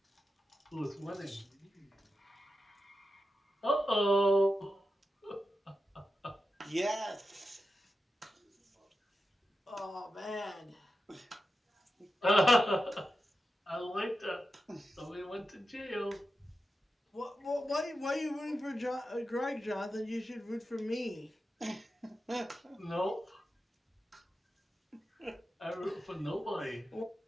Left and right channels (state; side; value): normal; both; correlation 0.90